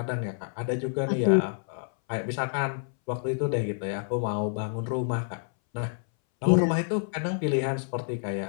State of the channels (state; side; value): silent; right; 59 dB below the other